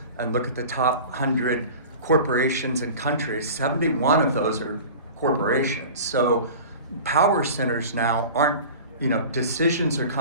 and look at the top 100 corporations and countries, 71 of those are corporations. So power centers now aren't, decisions are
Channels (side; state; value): both; inverted; correlation -0.37